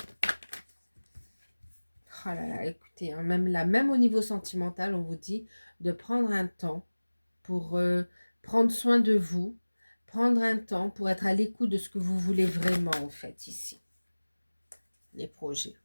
Oh là là, écoutez, hein, même là, même au niveau sentimental, on vous dit de prendre un temps pour prendre soin de vous, prendre un temps pour être à l'écoute de ce que vous voulez vraiment, en fait, ici. Les projets,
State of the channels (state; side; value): inverted; both; correlation -1.00